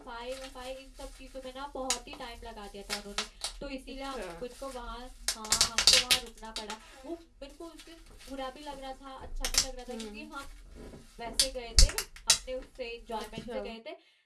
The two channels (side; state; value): both; identical; correlation 1.00